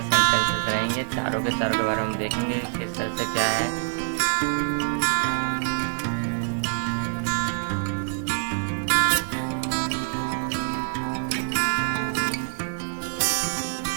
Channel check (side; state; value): left; silent; digital silence